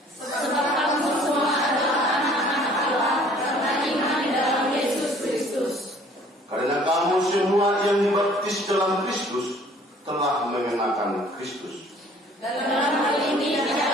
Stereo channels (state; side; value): normal; both; correlation 0.55